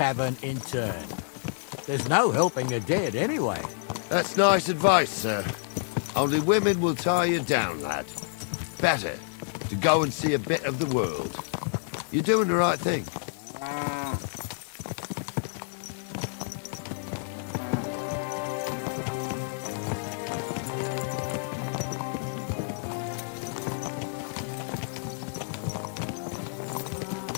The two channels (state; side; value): silent; right; digital silence